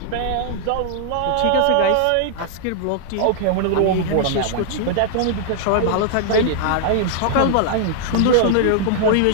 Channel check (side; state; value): both; different; correlation -0.01